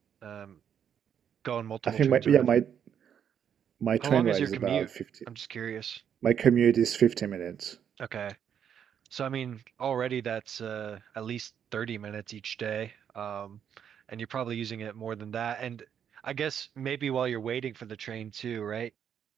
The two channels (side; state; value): left; quieter; 8.5 dB